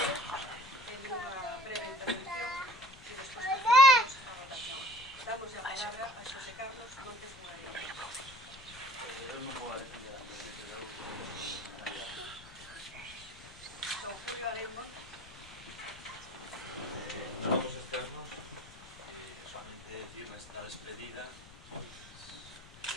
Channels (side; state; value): left; noise; rumble, 20 dB below the sound